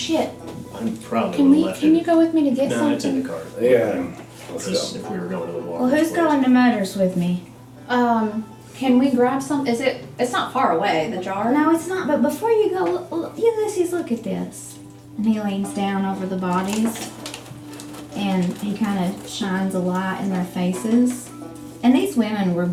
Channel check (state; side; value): identical; both; correlation 1.00